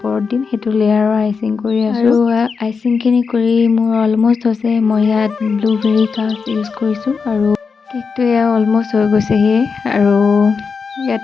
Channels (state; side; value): quieter; right; 5.3 dB